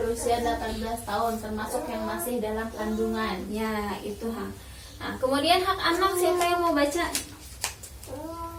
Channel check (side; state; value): both; identical; correlation 1.00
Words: 18 tahun, termasuk yang masih dalam kandungan. Ya, itu hak. Nah, kemudian hak anak, siapa yang mau baca?